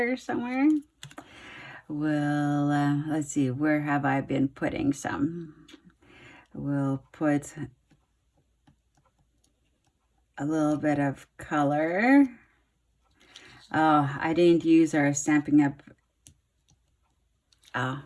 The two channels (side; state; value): both; identical; correlation 1.00